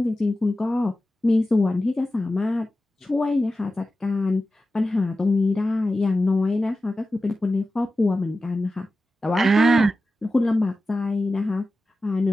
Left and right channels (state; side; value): normal; both; correlation 0.93